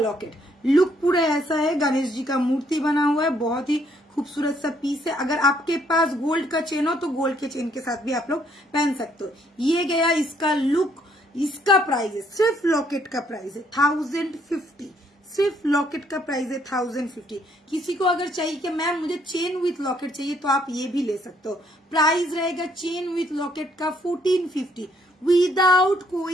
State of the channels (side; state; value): both; normal; correlation 0.68